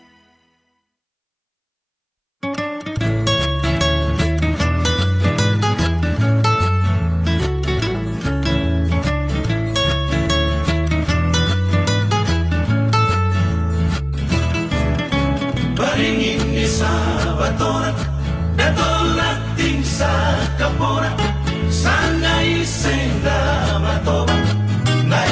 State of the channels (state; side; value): identical; both; correlation 1.00